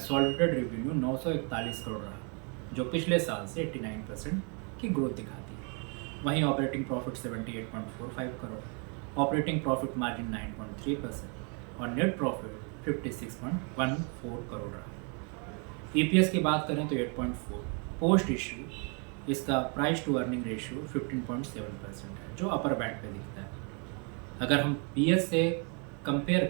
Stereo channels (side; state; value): left; quieter; 36.9 dB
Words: रेवेन्यू 941 करोड़ रहा, जो पिछले साल से 89% की ग्रोथ दिखाती है। वहीं operating profit 78.45 crore, operating profit margin 9.3% और नेट प्रॉफिट 56.14 करोड़ रहा। EPS की बात करें तो 8.4, पोस्ट इश्यू इसका प्राइस टू अर्निंग रेशियो 15.7% है, जो अपर बैंड पे दिखता है। अगर हम PS से कंपेयर